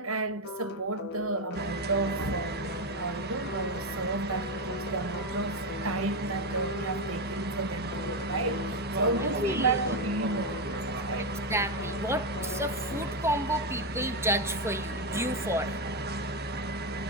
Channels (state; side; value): normal; both; correlation 0.09